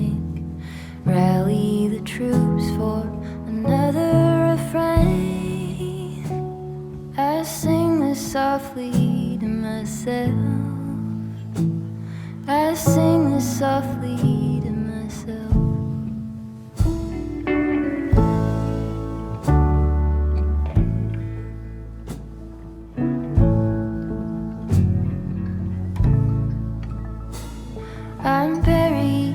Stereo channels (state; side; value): identical; both; correlation 1.00